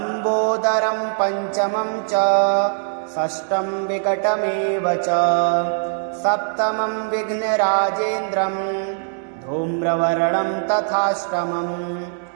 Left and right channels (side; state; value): left; silent; 62 dB below the other